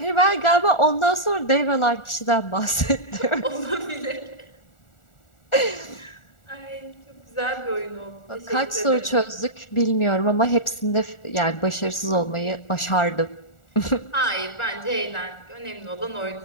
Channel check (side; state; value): right; late; 1.4 ms